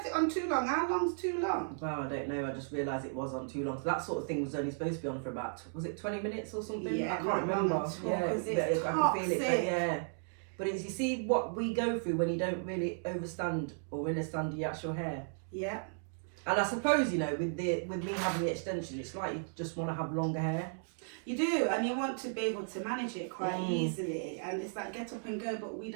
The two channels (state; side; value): silent; left; digital silence